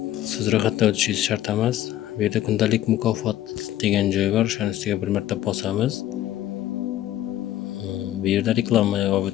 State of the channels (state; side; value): quieter; right; 13.3 dB